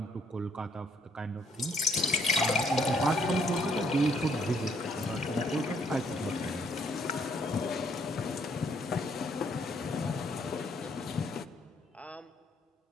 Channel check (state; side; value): normal; both; correlation 0.67